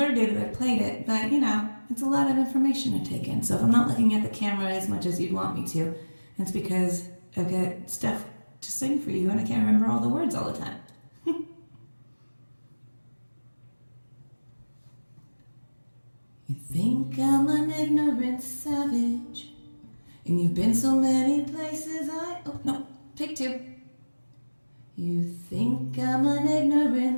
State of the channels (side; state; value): both; inverted; correlation -1.00